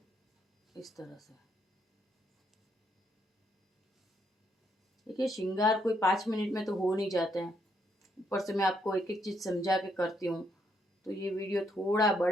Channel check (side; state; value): both; normal; correlation 0.74